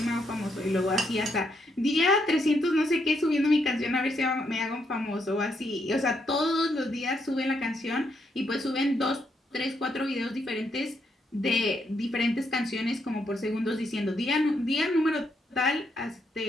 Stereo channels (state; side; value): normal; both; correlation 0.76